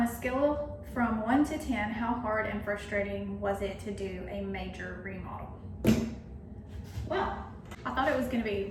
a scale from 1 to 10, how hard and frustrating was it to do a major remodel? Well, I thought it was gonna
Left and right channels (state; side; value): identical; both; correlation 1.00